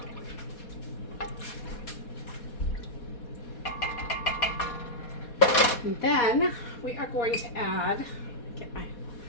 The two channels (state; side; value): late; right; 4.2 ms